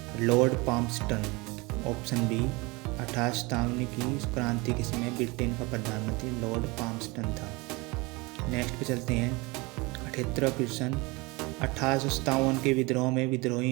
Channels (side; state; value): left; quieter; 25.2 dB